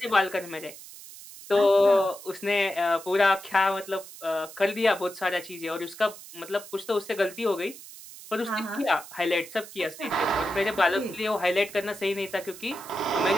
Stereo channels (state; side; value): noise; right; hiss, 16 dB below the sound